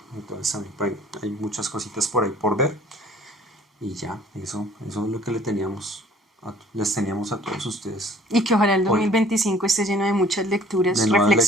Entonces también pues, hay muchas cositas por ahí por ver. Y ya, eso es lo que les teníamos a todos ustedes. Y que ojalá el Hoy, 2025 esté lleno de muchas lecturas, de nuevas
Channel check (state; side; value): normal; both; correlation 0.54